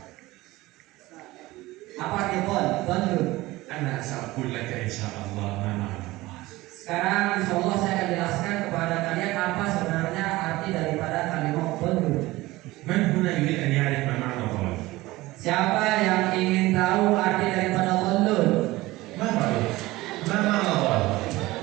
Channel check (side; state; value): left; quieter; 19.1 dB